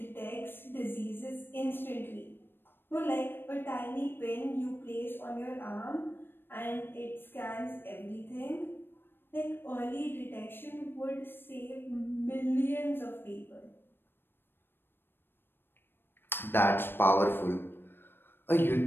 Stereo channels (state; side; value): late; right; 0.10 ms